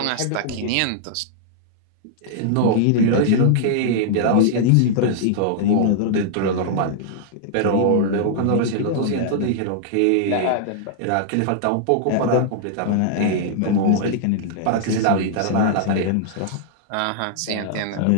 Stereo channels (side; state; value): both; different; correlation -0.01